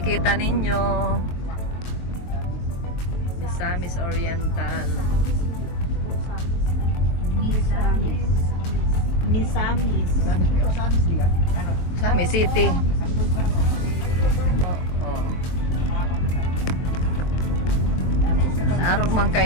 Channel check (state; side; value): late; right; 23 ms